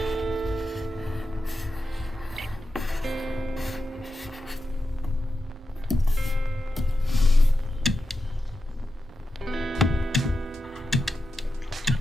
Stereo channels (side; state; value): both; normal; correlation 0.90